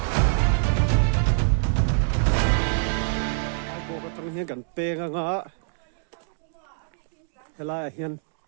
ai bo ka tang hian kan penga nga helai hian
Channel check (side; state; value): left; silent; digital silence